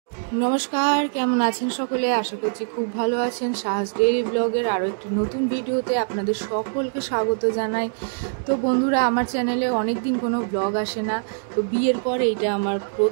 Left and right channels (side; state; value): left; silent; digital silence